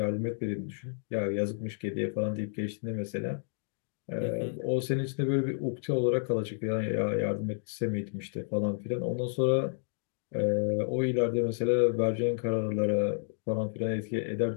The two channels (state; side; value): silent; right; digital silence